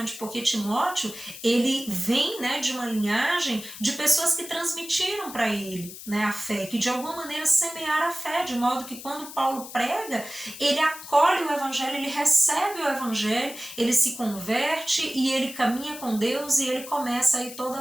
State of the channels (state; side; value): noise; left; hiss, 13 dB below the sound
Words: porque Timóteo, ele vem, né, de uma linhagem de pessoas que transmitiram para ele, né, a fé, que de alguma maneira semearam a fé, de modo que quando Paulo prega, ele acolhe o evangelho, ele recebe o evangelho, ele se converte e ele caminha com Deus e ele começa aí toda